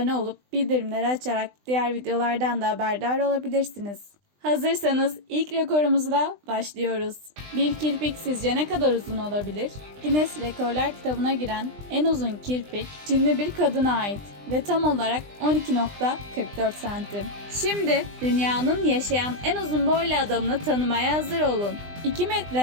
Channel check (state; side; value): late; left; 20 ms